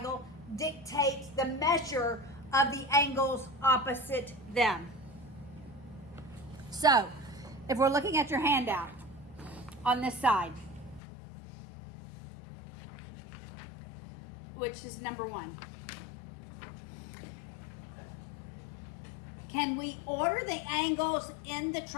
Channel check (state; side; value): drops out; right; at 11.0 s